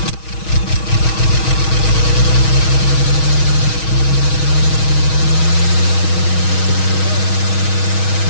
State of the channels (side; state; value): right; late; 6.3 ms